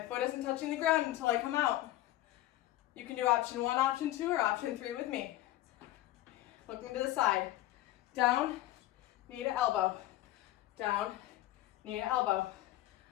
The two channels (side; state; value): right; quieter; 15.3 dB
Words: foot isn't touching the ground until I come out. You can do option 1, option 2, or option 3 with me. Looking to the side. Down, knee to elbow. Down, knee to elbow.